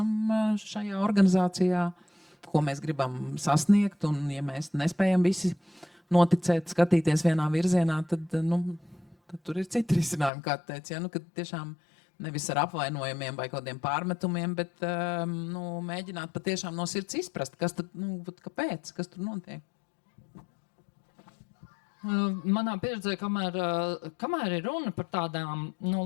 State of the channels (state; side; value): drops out; right; at 10.3 s